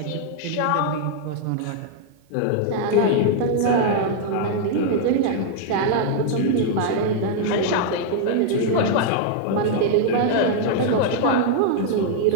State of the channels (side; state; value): both; different; correlation 0.00